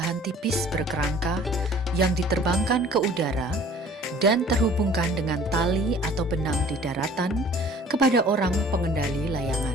tipis berkerangka yang diterbangkan ke udara dan terhubungkan dengan tali atau benang di daratan kepada orang pengendali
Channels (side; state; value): both; normal; correlation 0.51